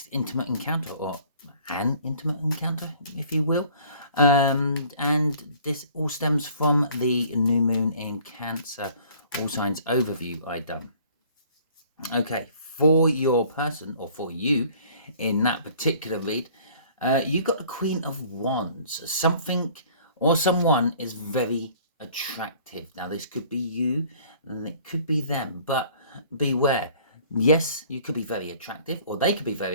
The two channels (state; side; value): inverted; both; correlation -0.53